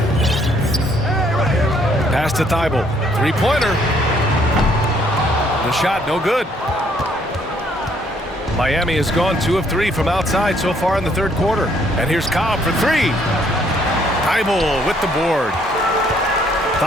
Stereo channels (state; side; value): normal; both; correlation 0.66